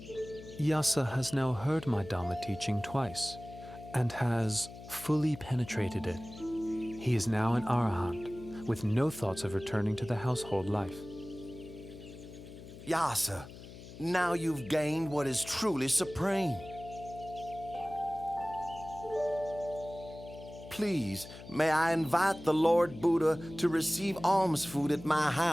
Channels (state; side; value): noise; left; hum, 15 dB below the sound